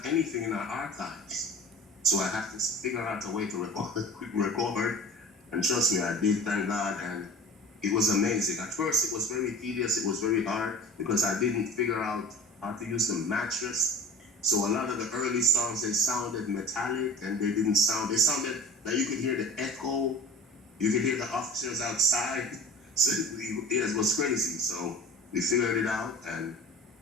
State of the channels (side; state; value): both; normal; correlation 0.38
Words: anything in our archives. So I had to figure out a way to record. And trust me, I did, thank God. And it was amazing. At first, it was very tedious. It was very hard because I didn't figure out how to use the mattress. So a lot of the early songs, they sounded metallic and they sounded that you could hear the echo. You could hear the officers outside. So it was crazy. So we figured it out, and